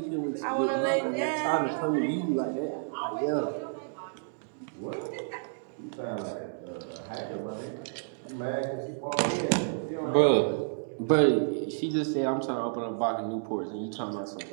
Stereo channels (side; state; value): left; silent; digital silence